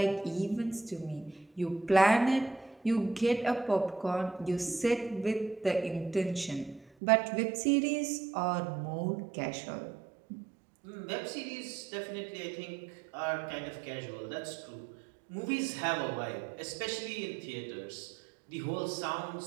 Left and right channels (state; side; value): drops out; left; at 6.9 s